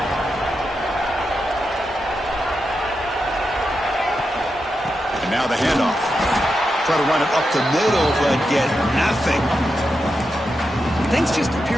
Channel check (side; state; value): both; normal; correlation 0.87